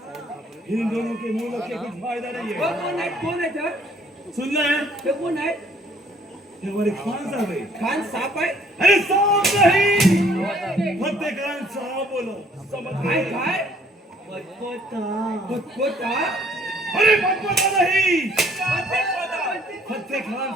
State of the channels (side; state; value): both; normal; correlation 0.61